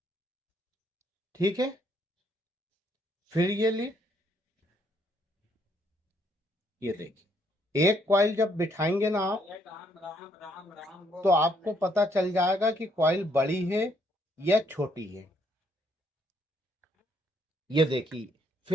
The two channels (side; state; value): both; normal; correlation 0.70